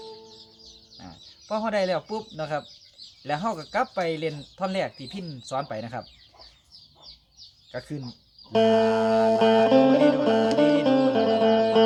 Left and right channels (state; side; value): identical; both; correlation 1.00